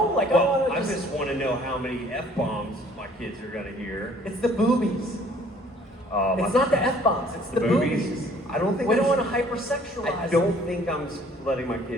well, I want I to just want to know how many F-bombs my kids are going to hear. It's the boobies. It's not the F-bombs, it's the boobies. I don't think we don't want to hypersexualize. I don't think I'm letting my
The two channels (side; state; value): both; normal; correlation 0.57